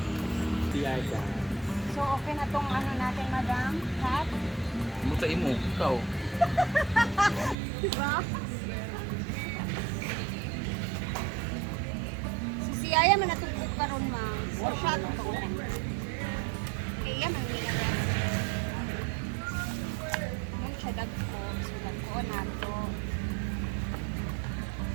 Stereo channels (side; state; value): left; drops out; at 7.6 s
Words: So okay na tong ano natin, madam? Hat? Mutain mo, ikaw. Diba? Si Aya man natugtog karon ma. Or siya tugtog. Kaya man nila na. Mun siya dagko, so dagko nato.